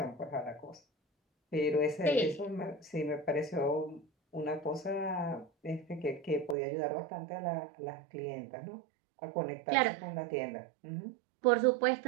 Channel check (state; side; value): drops out; left; at 6.6 s